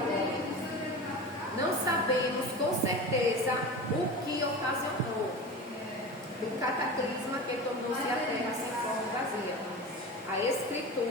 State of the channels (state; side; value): normal; both; correlation 0.30